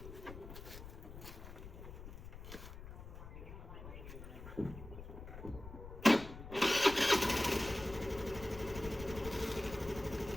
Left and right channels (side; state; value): left; noise; rumble, 12 dB below the sound